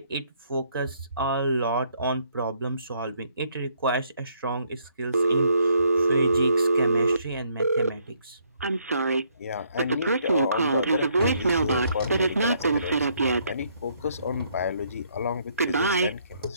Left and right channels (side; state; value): both; inverted; correlation -0.70